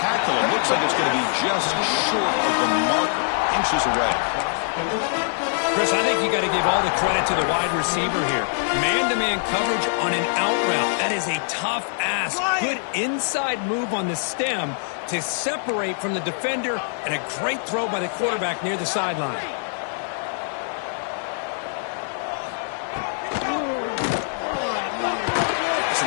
it. Looks like it's going to be just short of the marker. Inches away. Chris, I think you got to give all the credit to the wide receiver here. Man-to-man coverage on an out route. That is a tough ask. Good inside move on the stem to separate from the defender, and a great throw by the quarterback near the sideline. It's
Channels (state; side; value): silent; right; digital silence